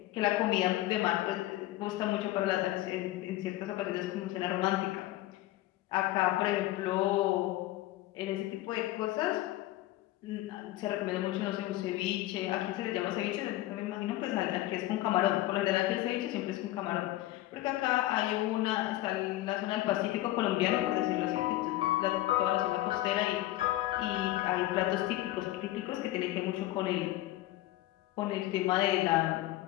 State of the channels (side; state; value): right; quieter; 16.3 dB